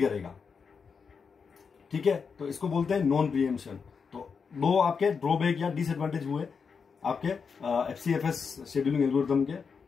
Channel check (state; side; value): quieter; right; 5.7 dB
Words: ठीक है, तो इसको बोलते हैं नॉन प्रीएम्पशन। तो दो आपके ड्रॉबैक या डिसएडवांटेज हुए आपके FCFS शेड्यूलिंग एल्गोरिथम के,